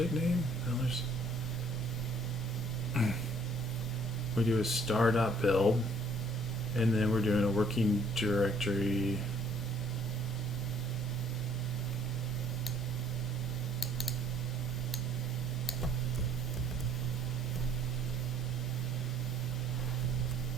name? No, we do a star.build, and then we're doing a working directory.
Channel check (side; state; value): right; noise; hum, 22 dB below the sound